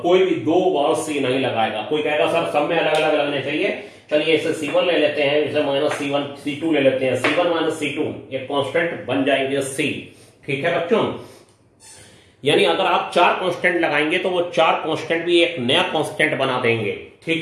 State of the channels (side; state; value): both; identical; correlation 1.00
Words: कोई भी दो बार सी नहीं लगाएगा। कोई कहेगा सर सब में अलग अलग लगने चाहिए, चलिए इसे C1 ले लेते हैं, इसे माइनस C1 C2 ले लेते हैं, C1 माइनस C2 एक कांस्टेंट बन जाएंगे C, ठीक है बच्चों। यानी अगर आप 4 कांस्टेंट लगाएंगे तो वो 4 कांस्टेंट भी एक नया कांस्टेंट बना देंगे,